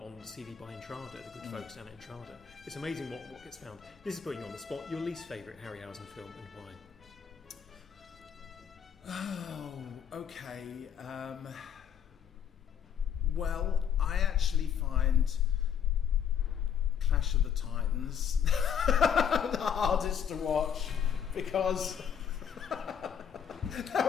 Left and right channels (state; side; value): quieter; right; 8.3 dB